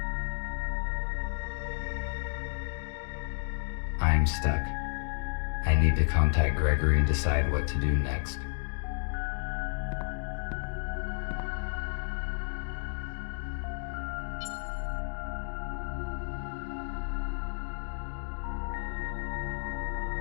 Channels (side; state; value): right; silent; 57 dB below the other